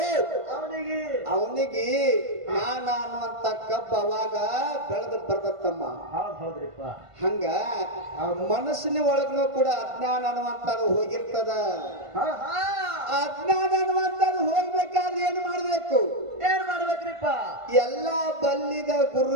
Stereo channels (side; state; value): left; late; 1.5 ms